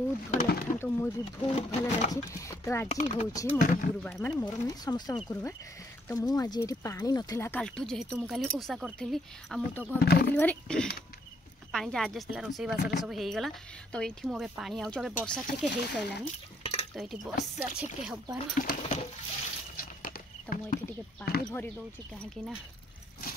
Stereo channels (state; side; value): normal; both; correlation 0.70